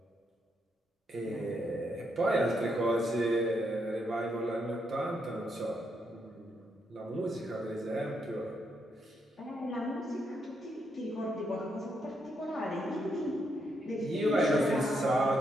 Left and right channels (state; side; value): normal; both; correlation 0.78